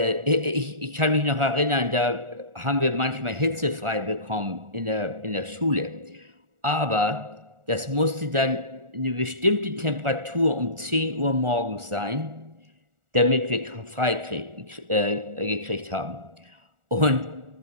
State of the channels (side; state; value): left; late; 1.4 ms